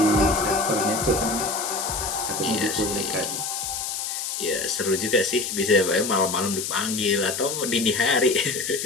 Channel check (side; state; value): left; noise; hiss, 4 dB below the sound